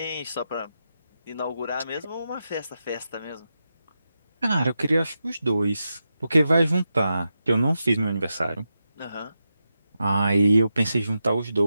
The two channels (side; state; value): both; inverted; correlation -0.88